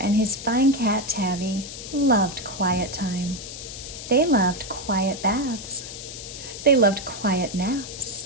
and his fine cat Tabby loved quiet time. They loved quiet baths. They loved quiet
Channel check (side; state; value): left; noise; hiss, 11 dB below the sound